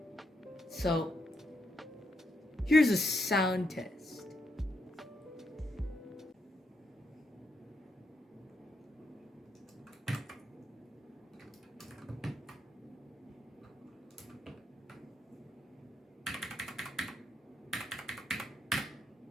So, here's a sound test.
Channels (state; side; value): normal; both; correlation 0.79